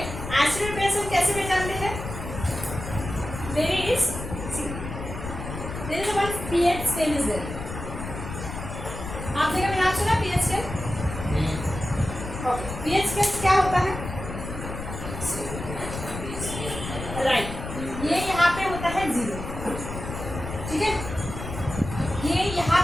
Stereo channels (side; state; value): left; noise; rumble, 8 dB below the sound